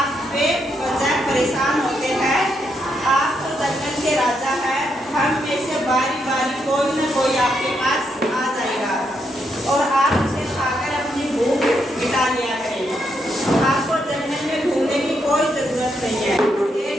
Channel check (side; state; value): both; normal; correlation 0.79